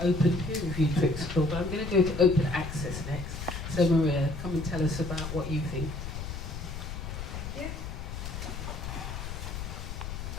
open peer review to explore, but I'm going to go to open access next. So Maria, come and tell us about what you think. Thank you.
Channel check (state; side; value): noise; left; rumble, 7 dB below the sound